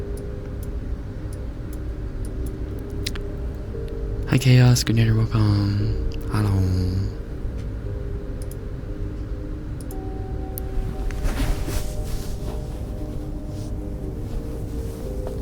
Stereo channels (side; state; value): both; identical; correlation 1.00